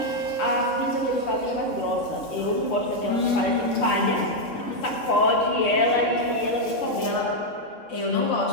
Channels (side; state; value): right; late; 3.6 ms